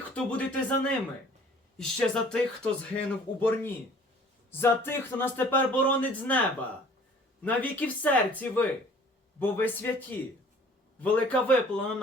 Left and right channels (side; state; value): both; normal; correlation 0.51